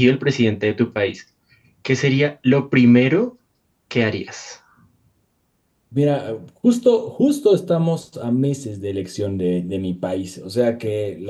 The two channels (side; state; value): both; identical; correlation 1.00